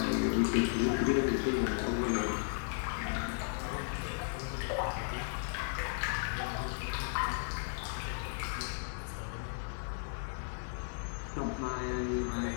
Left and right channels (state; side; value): silent; right; digital silence